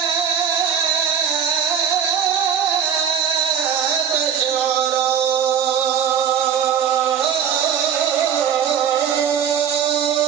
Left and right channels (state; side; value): quieter; left; 8.1 dB